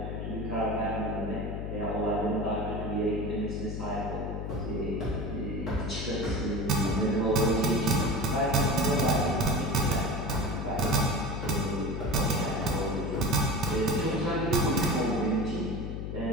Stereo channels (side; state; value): left; noise; hum, 5 dB below the sound